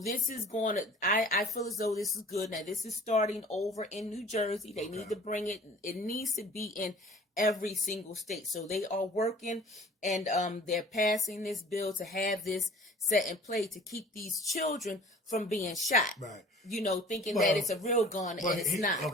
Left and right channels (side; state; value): both; normal; correlation 0.47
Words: is going to, I feel as though this is good. Now, this is starting over in New Jersey. They need to bring it. It needs to be in every single state. So they are working, and they're passing this bill to have this set in play to keep these children from being shot. Thinking that it's a real gun and it's not.